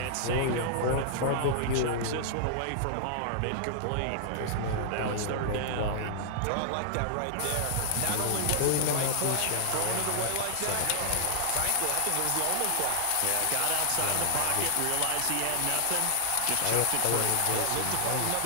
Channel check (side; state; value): both; different; correlation -0.01